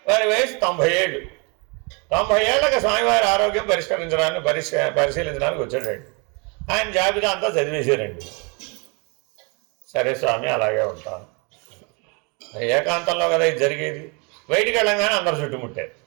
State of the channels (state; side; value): quieter; left; 32.2 dB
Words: వారి వయసు 90 ఏళ్ళు. 90 ఏళ్ళకి స్వామివారి ఆరోగ్యం పరిశీలించడానికి వచ్చాడండి. ఆయన జాబితా అంతా చదివేశారండి. సరే స్వామి, అలాగే ఉంటాను. ఏకాంతంలో కదా ఇది జరిగేది. బయటికి వెళ్ళంగానే అందరు చుట్టుముట్టారు.